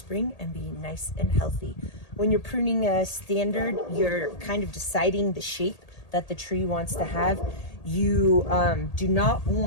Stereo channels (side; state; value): right; late; 1.8 ms